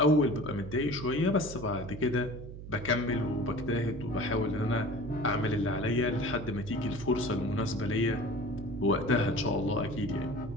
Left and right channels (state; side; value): noise; right; hum, 11 dB below the sound